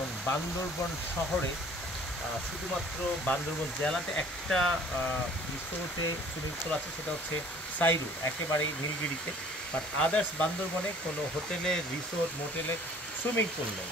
বান্দরবন শহরে শুধুমাত্র বান্দরবন জেলাতে একটা রিসোর্টে সুইমিং পুল আছে, সেটা হচ্ছে সাইরু, একেবারেই নীলগিরিতে। বাট আদার্স বান্দরবনে কোনো হোটেলে, রিসোর্ট, মোটেলে সুইমিং পুল নেই।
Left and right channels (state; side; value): normal; both; correlation 0.52